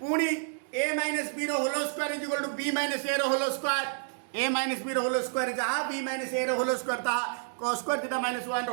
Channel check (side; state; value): left; silent; digital silence